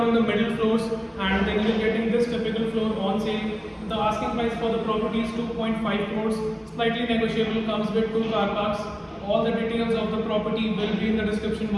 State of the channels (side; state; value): both; identical; correlation 1.00